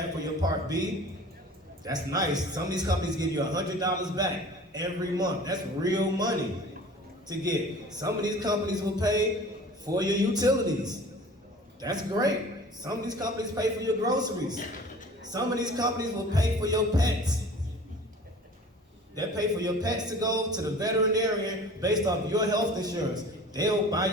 for your Part B. That's nice. Some of these companies give you $100 back every month. That's real money to get. Some of these companies will pay for your utilities. That's great. Some of these companies pay for your groceries. Some of these companies will pay for your pets. They pay for your pets to go to the veterinarian based off your health insurance. They'll buy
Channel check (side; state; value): both; normal; correlation 0.44